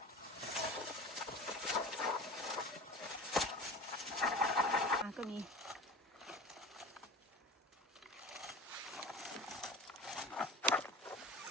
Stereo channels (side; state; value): both; normal; correlation 0.33